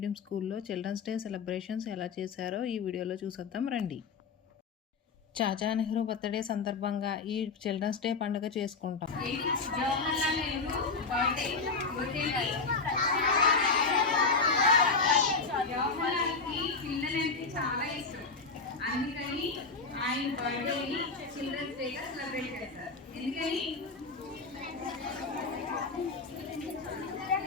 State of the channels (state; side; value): quieter; right; 4.4 dB